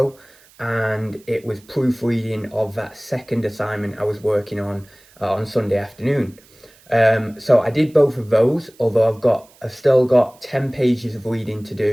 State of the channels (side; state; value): right; noise; hiss, 28 dB below the sound